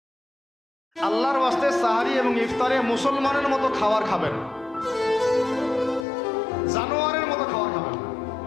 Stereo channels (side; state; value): right; drops out; at 6.1 s